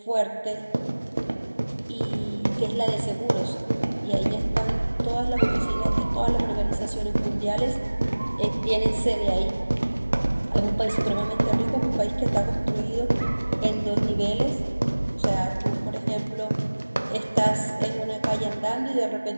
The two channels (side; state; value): both; inverted; correlation -1.00